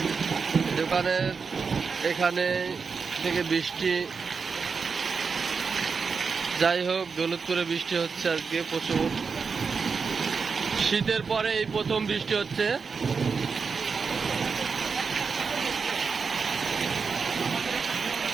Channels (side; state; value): left; quieter; 5.3 dB